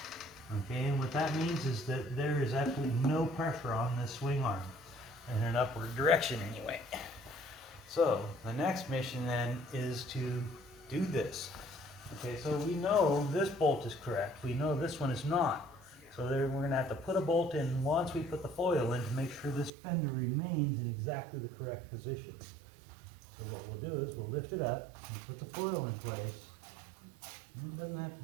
Okay, and what that means is that there is absolutely no pressure on this swing arm in an upward direction anyway. So the next mission then is to do this. Okay, so we know this bolt is correct. We know this one is not. So there, we're going to have to put a bolt in once we put the foil in to make sure this fender remains in exactly the correct position. So what we'll do is we'll lift it up and put the foil in place. And it doesn't have to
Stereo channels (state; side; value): drops out; left; at 19.7 s